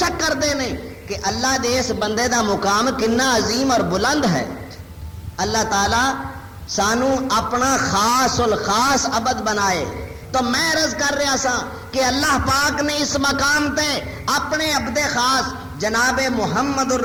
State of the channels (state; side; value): identical; both; correlation 1.00